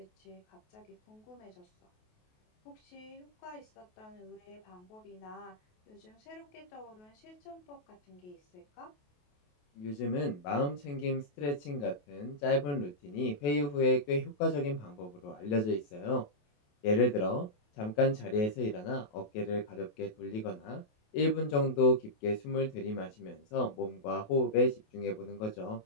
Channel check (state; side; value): late; right; 28 ms